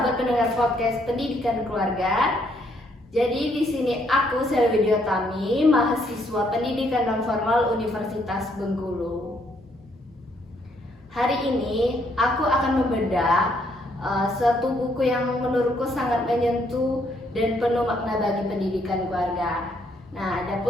pendengar podcast Pendidikan Keluarga. Jadi di sini aku Selvi Diotami, mahasiswa Pendidikan Non Formal Universitas Bengkulu. Hari ini aku akan membedah suatu buku yang menurutku sangat menyentuh dan penuh makna bagi pendidikan keluarga. Nah,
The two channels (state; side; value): normal; both; correlation 0.70